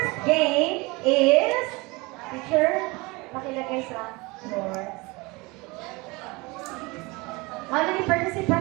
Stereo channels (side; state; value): left; quieter; 24.9 dB